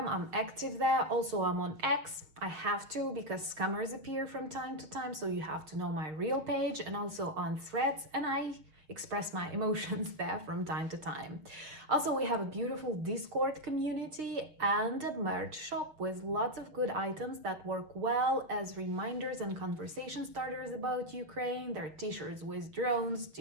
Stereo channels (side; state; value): left; late; 6.5 ms